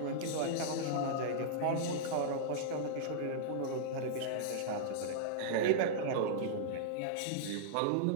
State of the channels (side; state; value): both; different; correlation -0.02